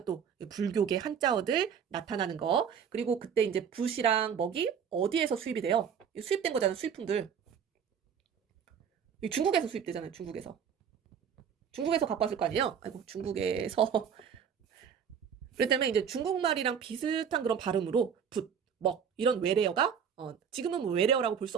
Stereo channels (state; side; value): quieter; left; 7.5 dB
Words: 또 불교계 한자어들 나타나는 거. 그리고 그때 이제 붓이랑 먹이 어디에서 수입이 돼요? 수입된 거잖아요. 수입품들. 중국에서 수입되잖아요. 중국에서 갖고 왔을 거 아니에요? 아이고 중국에서. 그렇기 때문에 이제 중국말이랑 비슷한 그런 발음으로 붓, 먹 이런 외래어가 지금은 뭐 외래어라고 볼 수